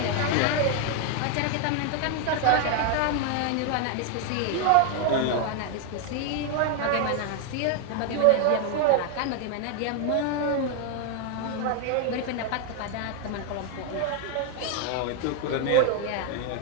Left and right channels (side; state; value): both; different; correlation 0.00